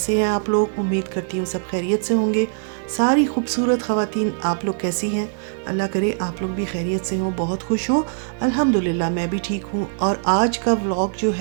हैं आप लोग। उम्मीद करती हूँ सब खैरियत से होंगे। सारी खूबसूरत ख़वातीन, आप लोग कैसी हैं। अल्लाह करे आप लोग भी खैरियत से हों, बहुत खुश हों। अल्हम्दुलिल्लाह मैं भी ठीक हूँ। और आज का व्लॉग जो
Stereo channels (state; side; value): silent; left; 64 dB below the other